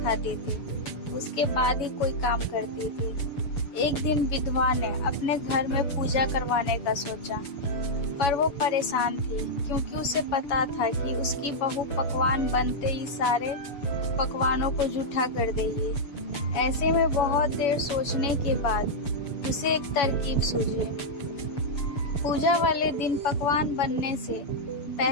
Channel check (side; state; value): right; late; 7.1 ms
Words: थी, उसके बाद ही कोई काम करती थी। एक दिन विधवा ने अपने घर में पूजा करवाने का सोचा, पर वो परेशान थी क्योंकि उसे पता था कि उसकी बहू पकवान बनते ही सारे पकवानों को जूठा कर देगी। ऐसे में बहुत देर सोचने के बाद उसे एक तरकीब सूझी। पूजा वाले दिन पकवान बनने से